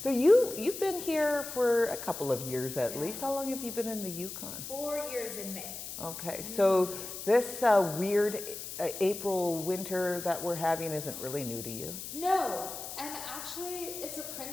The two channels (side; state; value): left; noise; hiss, 9 dB below the sound